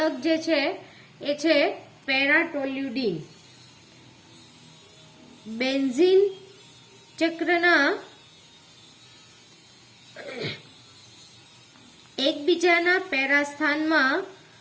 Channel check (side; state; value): both; identical; correlation 1.00